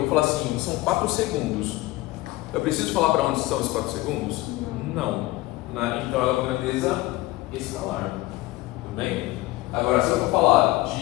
falar assim, são 4 segundos. Eu preciso falar para onde são os 4 segundos? Não. Então ela é uma grandeza escalar. Tudo bem? Agora, se eu for falar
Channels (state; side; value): quieter; right; 18.9 dB